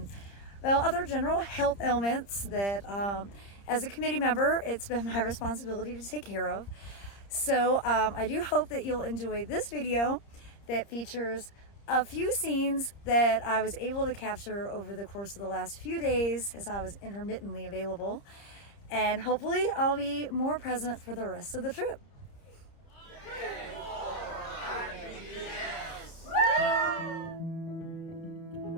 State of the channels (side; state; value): right; late; 30 ms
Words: well, other general health ailments that as a committee member, it's been my responsibility to take care of. So I do hope that you'll enjoy this video that features a few scenes that I was able to capture over the course of the last few days as I was intermittently available. And hopefully I'll be more present for the rest of the trip.